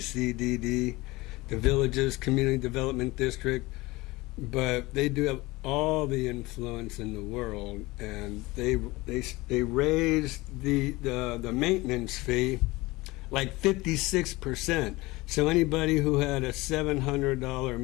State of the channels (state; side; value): quieter; right; 21.4 dB